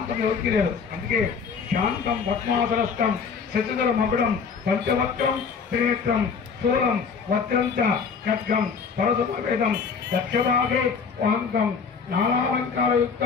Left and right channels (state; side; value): quieter; right; 5.8 dB